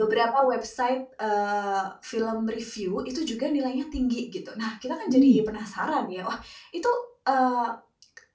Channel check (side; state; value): both; identical; correlation 1.00